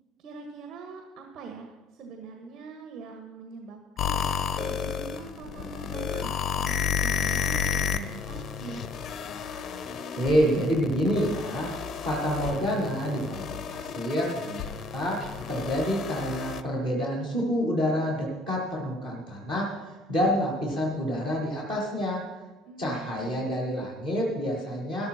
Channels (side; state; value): both; normal; correlation 0.58